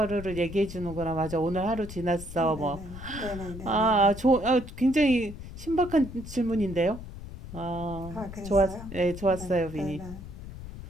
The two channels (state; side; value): noise; left; rumble, 12 dB below the sound